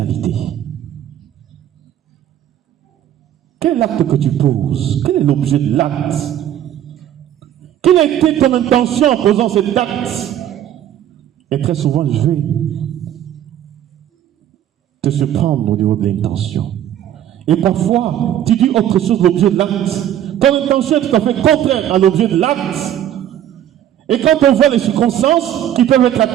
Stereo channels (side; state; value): left; quieter; 11.2 dB